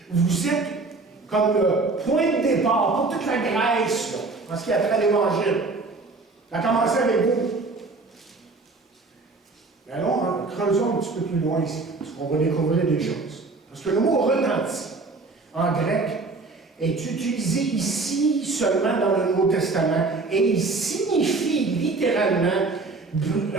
Vous êtes comme le point de départ pour toute la Grèce, là, en ce qui a trait à l'Évangile. Ça a commencé avec vous. Mais allons, creusons un petit peu plus loin ici, parce qu'on va découvrir des choses. Parce que le mot retenti, en grec, est utilisé ici seulement dans le Nouveau Testament, et il signifie littéralement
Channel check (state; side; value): quieter; left; 3.7 dB